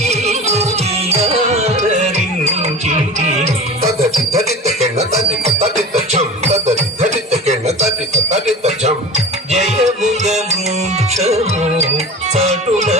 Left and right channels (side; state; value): both; normal; correlation 0.33